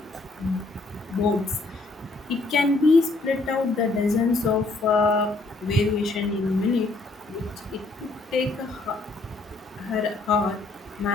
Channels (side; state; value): right; quieter; 3.2 dB